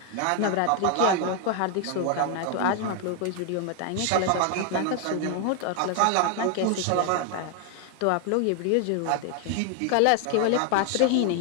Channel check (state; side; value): different; both; correlation 0.00